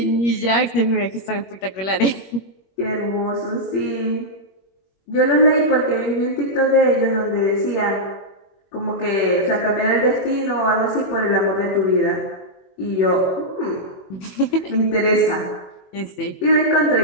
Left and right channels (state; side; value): late; right; 21 ms